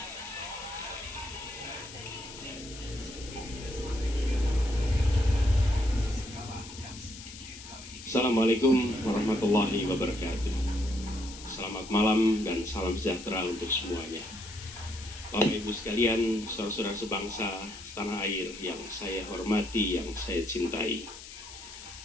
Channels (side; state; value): left; noise; hiss, 14 dB below the sound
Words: Assalamualaikum warahmatullahi wabarakatuh. Selamat malam dan salam sejahtera untuk semuanya. Bapak Ibu sekalian, saudara-saudara sebangsa setanah air yang saya hormati, yang saya cintai.